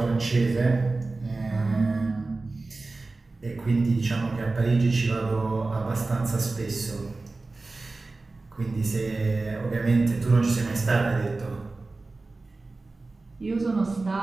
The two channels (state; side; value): quieter; left; 3.4 dB